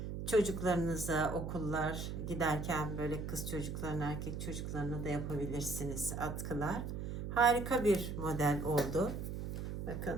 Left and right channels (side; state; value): right; noise; hum, 5 dB below the sound